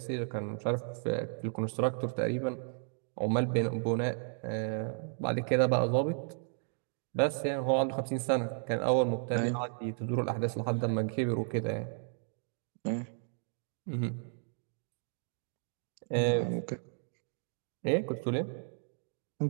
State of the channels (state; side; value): silent; left; 55 dB below the other